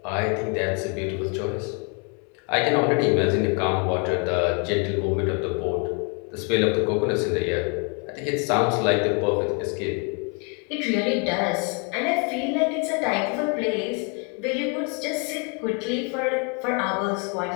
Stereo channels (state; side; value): quieter; right; 35.9 dB